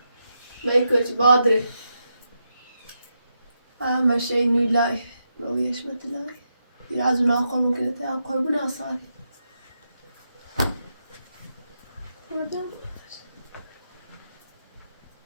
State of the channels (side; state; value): both; inverted; correlation -0.84